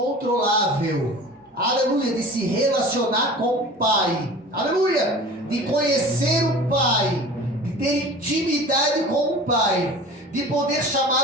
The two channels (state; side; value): normal; both; correlation 0.40